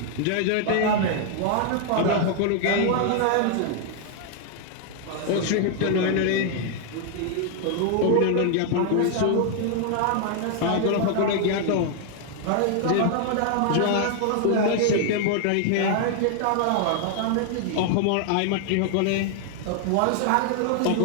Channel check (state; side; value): different; both; correlation 0.00